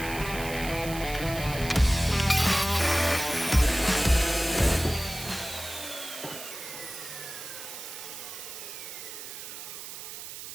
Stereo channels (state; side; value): noise; right; hiss, 10 dB below the sound